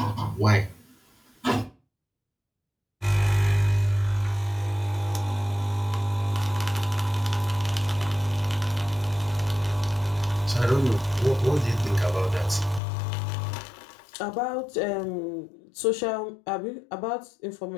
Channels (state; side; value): drops out; right; at 12.8 s